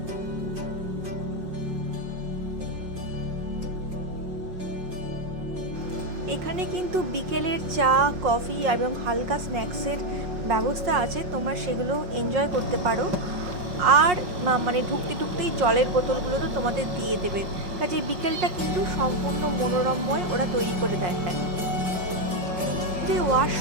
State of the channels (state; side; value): late; left; 5.5 ms